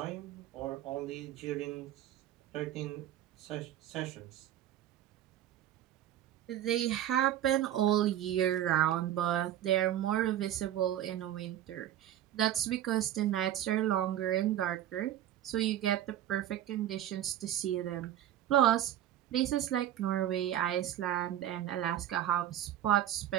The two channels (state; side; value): quieter; left; 11.8 dB